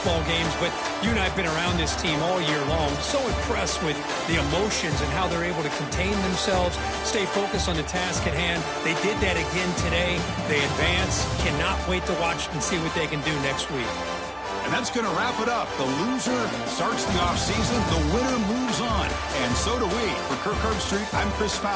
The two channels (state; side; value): identical; both; correlation 1.00